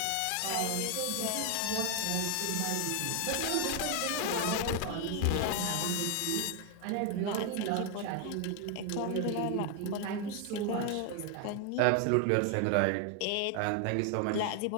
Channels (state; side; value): different; both; correlation 0.00